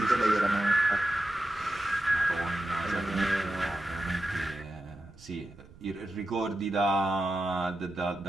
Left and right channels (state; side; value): noise; right; rumble, 22 dB below the sound